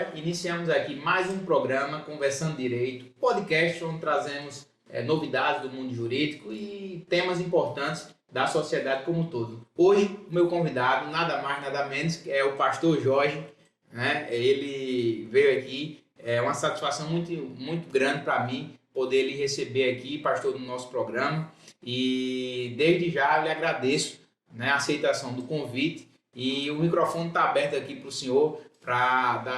Iniciamos aqui mais um programa Conversando Direito, podcast onde trazemos novidades do mundo jurídico e temas importantes da sociedade como um todo. Hoje, o meu convidado, nada mais, nada menos, é o pastor Jorge, né? Ele veio aqui, é uma satisfação muito grande para mim poder lhe receber aqui, pastor, no nosso programa, e desde já eu lhe agradeço, né, a aceitação do convite e o microfone está aberto aqui para o senhor para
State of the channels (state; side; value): identical; both; correlation 1.00